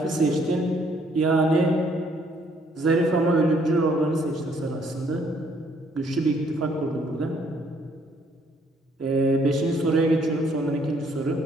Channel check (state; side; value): normal; both; correlation 0.66